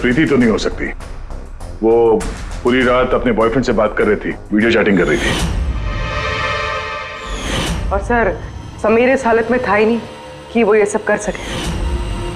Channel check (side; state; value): both; identical; correlation 1.00